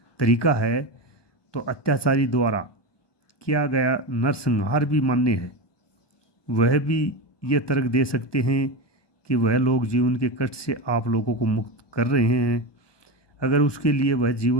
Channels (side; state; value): right; late; 1.2 ms